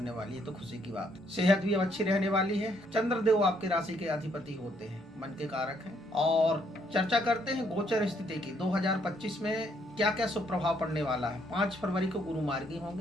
वाली है, तो खुशी की बात। सेहत भी अब अच्छी रहने वाली है। चंद्रदेव आपके राशि के अधिपति होते हैं, मन के कारक हैं। और चर्चा करते हैं गोचर स्थिति की। 2025 में क्या क्या शुभ प्रभाव पड़ने वाला है। 5 फरवरी को गुरु मार्गी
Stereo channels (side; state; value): both; normal; correlation 0.70